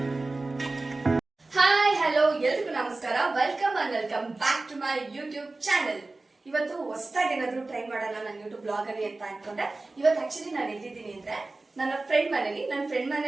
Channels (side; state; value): left; quieter; 3.2 dB